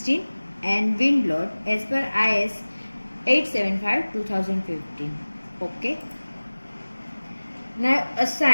and wind load as per IS 875-2015. Okay. Now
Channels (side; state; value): both; inverted; correlation -1.00